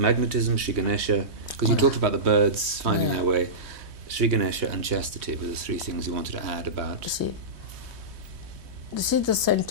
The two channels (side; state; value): left; late; 3.2 ms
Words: Sri Ganesha, because you talked about the birds finding their way. Sri Ganesha and chastity were the 3 things you wanted to add about. You see, this is the